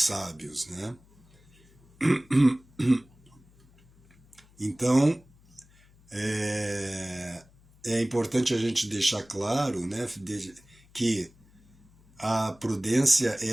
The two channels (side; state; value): left; noise; hum, 28 dB below the sound